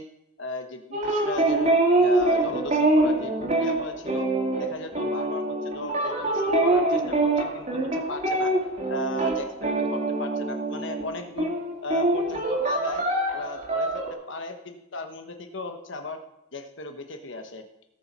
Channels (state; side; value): normal; both; correlation 0.27